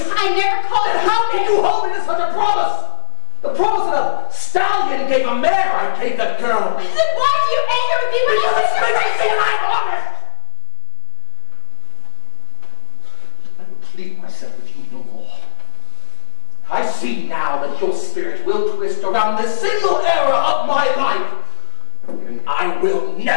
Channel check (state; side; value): silent; right; 65 dB below the other